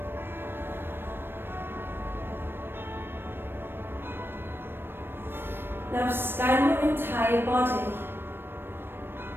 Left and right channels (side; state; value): left; late; 0.10 ms